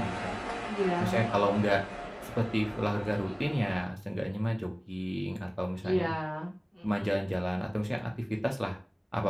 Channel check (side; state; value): both; identical; correlation 1.00